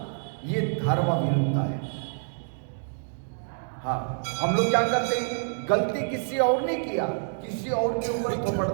ये धर्म विरुद्ध है। हाँ, हम लोग क्या करते हैं, गलती किसी और ने किया, किसी और के ऊपर थोपड़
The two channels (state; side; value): silent; left; digital silence